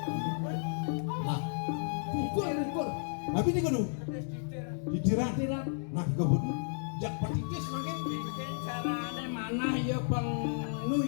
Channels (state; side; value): silent; right; digital silence